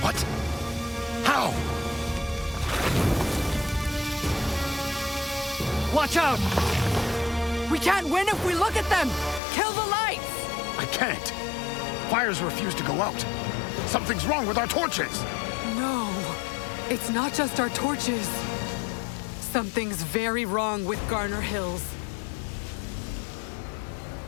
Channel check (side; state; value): right; drops out; at 9.4 s